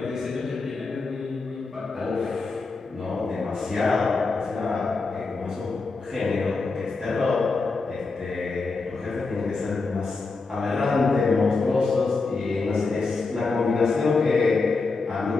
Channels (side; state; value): right; quieter; 4.0 dB